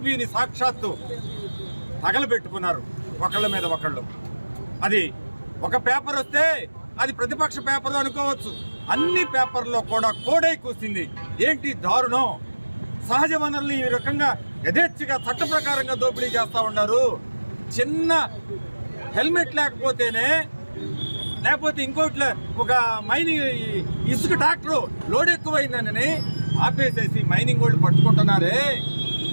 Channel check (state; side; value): inverted; both; correlation -1.00